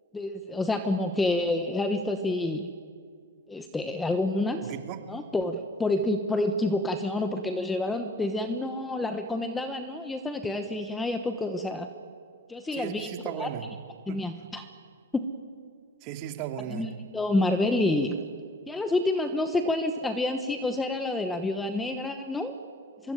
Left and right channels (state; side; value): normal; both; correlation 0.61